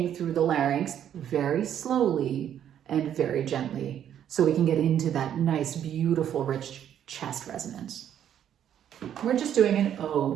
through the larynx very slowly and very gently so we can get into that nice, beautiful, rich chest resonance. We're just doing an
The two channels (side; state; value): left; quieter; 10.0 dB